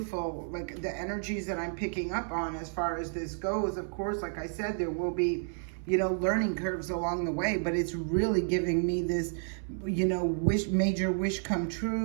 like the energies that I'm picking up on as far as this goes. Of course, like I said, there will be, learning curves along the way, but it's really giving me this, major wish come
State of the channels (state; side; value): silent; left; 57 dB below the other